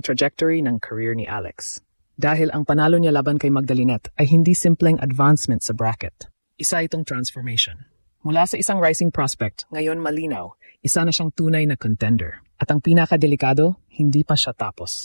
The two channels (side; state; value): both; inverted; correlation -1.00